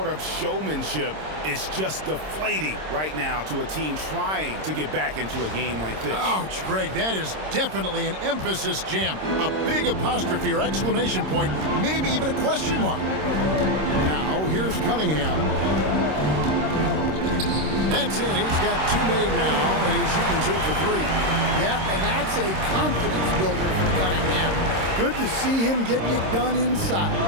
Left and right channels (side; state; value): left; late; 26 ms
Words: of showmanship is just deflating right now to a team trying to get back into a game like this. Ouch, Greg, that is definitely an emphasis jam. A big apostrophe or exclamation point, maybe even a question mark. Now, here's Cunningham. That's it. He's got 2 made now, and he's shooting 2 for 3. Yep, and that's a confidence builder for Cunningham. Good to see him getting it done inside.